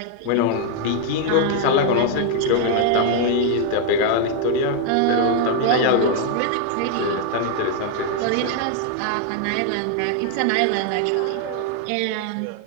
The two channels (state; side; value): different; both; correlation 0.00